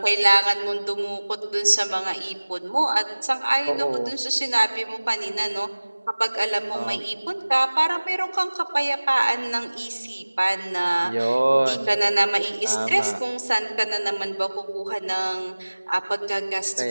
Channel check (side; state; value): both; inverted; correlation -1.00